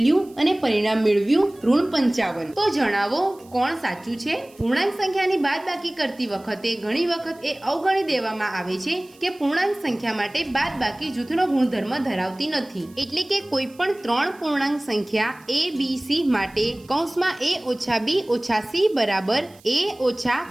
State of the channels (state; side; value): noise; right; hiss, 27 dB below the sound